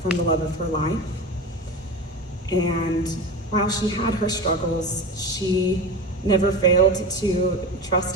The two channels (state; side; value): normal; both; correlation 0.27